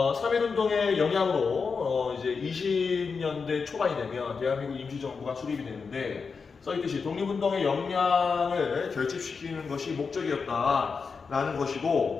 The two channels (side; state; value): right; quieter; 5.2 dB